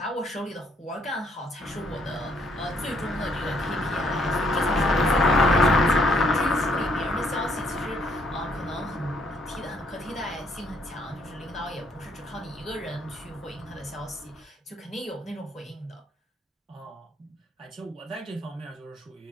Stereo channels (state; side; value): normal; both; correlation 0.68